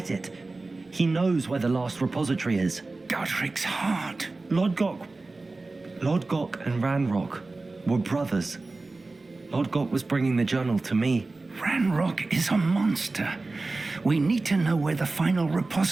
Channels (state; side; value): quieter; left; 3.4 dB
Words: it. He knows where the last repository is. Godric's heart. Lodgok and Ranrock were brothers. Lodgok was bringing the journal to me. Ranrock is a monster. We need to know where the final